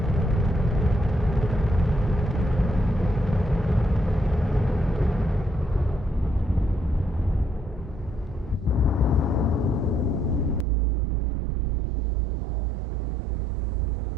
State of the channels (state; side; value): drops out; left; at 10.7 s